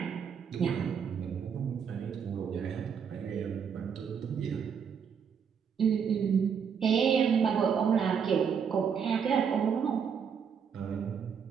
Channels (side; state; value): left; quieter; 7.0 dB